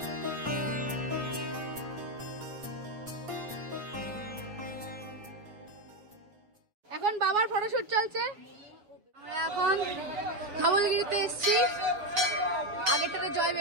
এখন বাবার ফটোশুট চলছে। আমরা এখন ধবলগিরিতে এসছি, আগেরটাতে জয়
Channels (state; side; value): late; left; 7.2 ms